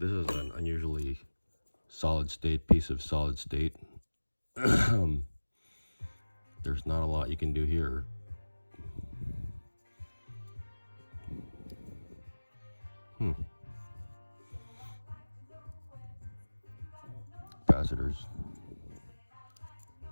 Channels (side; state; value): both; inverted; correlation -1.00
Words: is an unusually solid state piece of solid state. There's not a lot you can do here. Capacitors.